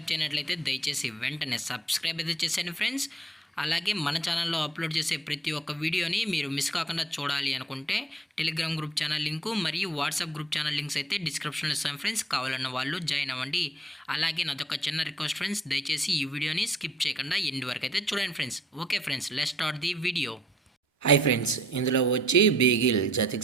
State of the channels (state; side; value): normal; both; correlation 0.61